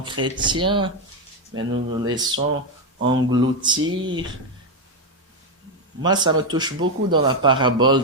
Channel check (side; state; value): both; normal; correlation 0.06